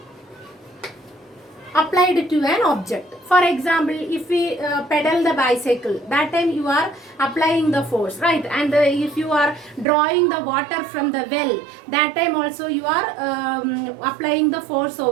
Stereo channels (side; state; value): left; drops out; at 9.9 s